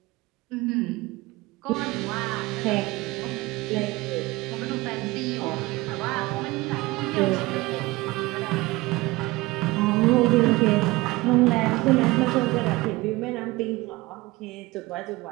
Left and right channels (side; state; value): left; quieter; 20.8 dB